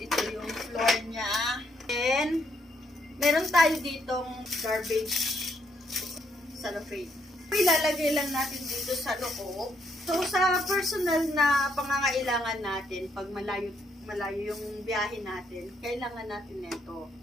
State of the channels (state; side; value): normal; both; correlation 0.74